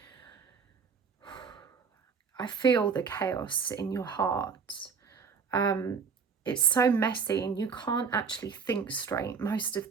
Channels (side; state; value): left; quieter; 5.8 dB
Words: feel the chaos in your heart. It's so messy and you can't actually think straight most of